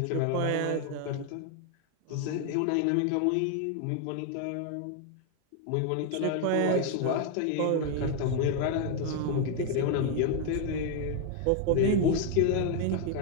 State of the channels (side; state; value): both; different; correlation 0.01